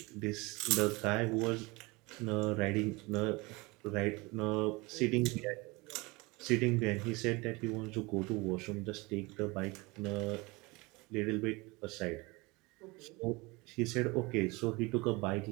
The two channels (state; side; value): quieter; left; 24.7 dB